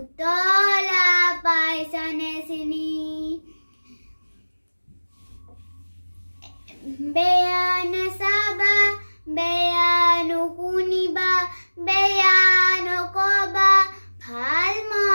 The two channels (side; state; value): both; inverted; correlation -1.00